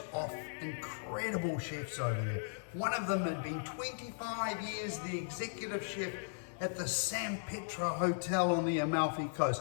off incredible chefs over there. One of them had been 25 years the executive chef at the San Pietro Hotel on the Amalfi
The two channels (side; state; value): right; silent; 53 dB below the other